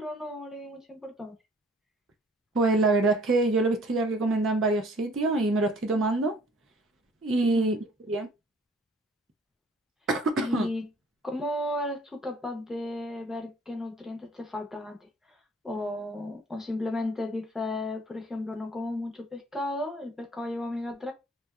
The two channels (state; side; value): normal; both; correlation 0.55